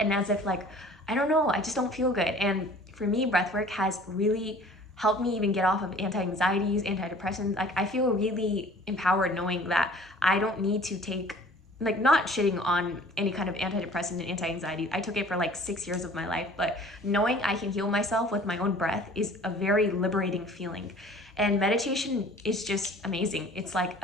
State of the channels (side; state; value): both; normal; correlation 0.49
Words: as if like, I don't know, I just don't feel good. And for me, breathwork has really helped me even get off of anti-anxieties, antidepressants. Like I feel really empowered knowing that I don't need to take, like not shitting on any kind of antidepressant and anti-anxiety. I took it for like 6 years of my life, but knowing I can heal myself with my own breath is a very liberating feeling. And meditation is just amazing. It's like